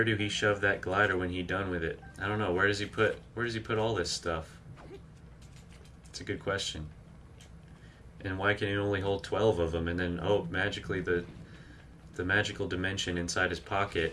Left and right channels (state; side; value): identical; both; correlation 1.00